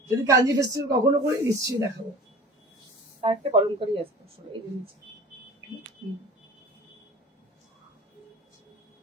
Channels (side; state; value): both; normal; correlation 0.41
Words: যদি কাঞ্জি ফেস্টিভ্যাল কখনো করি নিশ্চয়ই দেখাবো। আর একটা কলমকারি আছে আসলে এই জিনিস।